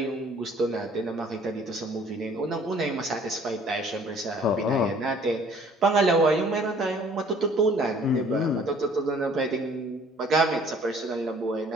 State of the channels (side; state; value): both; normal; correlation 0.56